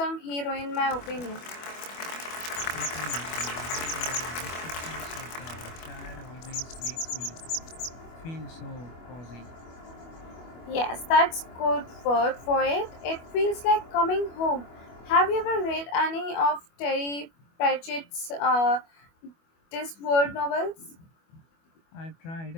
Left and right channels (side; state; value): right; late; 25 ms